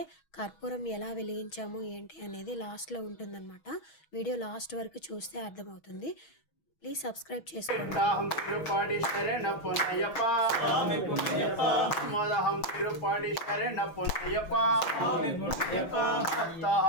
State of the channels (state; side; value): late; right; 6.2 ms